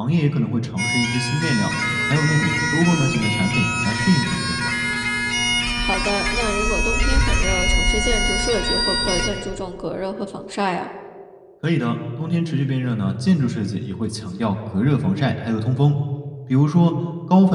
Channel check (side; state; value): both; identical; correlation 1.00